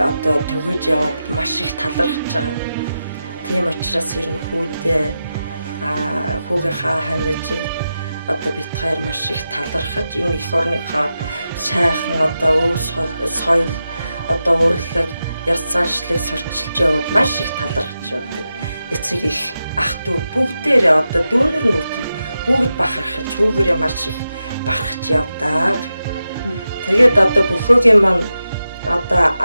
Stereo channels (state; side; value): inverted; both; correlation -0.90